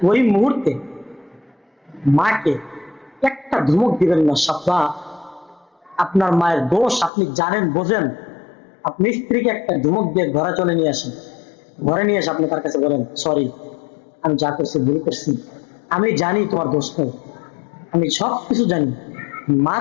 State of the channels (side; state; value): right; drops out; at 7.1 s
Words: ওই মুহূর্তে মাকে একটা ধমক দিবেন না। সাব্বা, আপনার মায়ের দোষ আপনি জানেন, বোঝেন, আপনি স্ত্রীকে একটা ধমক দিয়ে ঘরে চলে নিয়ে আসেন। ঘরে নিয়ে এসে আপনি তার কাছে বলেন, সরি, আমি যা করছি ভুল করছি, আমি জানি তোমার দোষ নেই, আমি সব কিছু জানি। মা